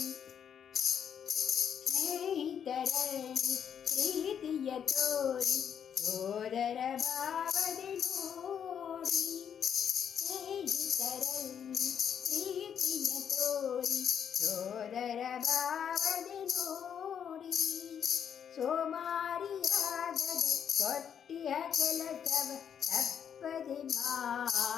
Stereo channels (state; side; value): quieter; right; 8.3 dB